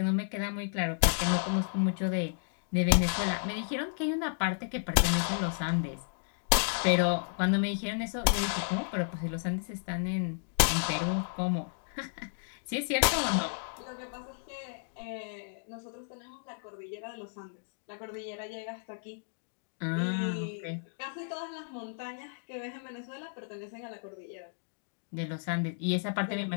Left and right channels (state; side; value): silent; right; digital silence